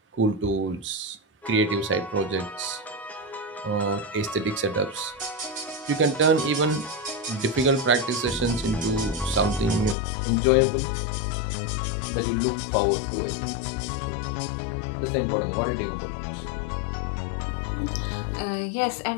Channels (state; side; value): drops out; right; at 10.0 s